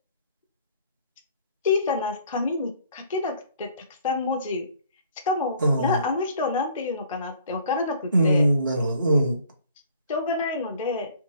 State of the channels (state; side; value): inverted; both; correlation -0.56